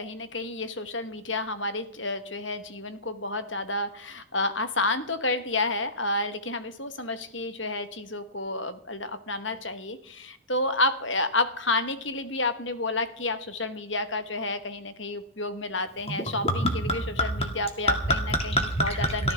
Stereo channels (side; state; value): both; normal; correlation -0.20